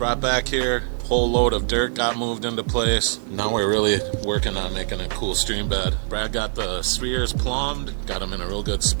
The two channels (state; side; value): silent; left; 63 dB below the other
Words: back here. Whole load of dirt got moved into place. Now we're really working on making a cool stream bed. Brad got the spheres plumbed, got them in a real good